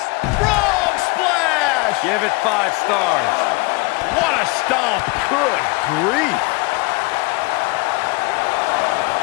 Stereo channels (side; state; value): right; quieter; 25.2 dB